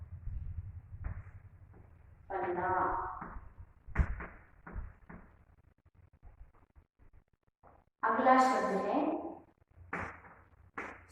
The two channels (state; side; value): identical; both; correlation 1.00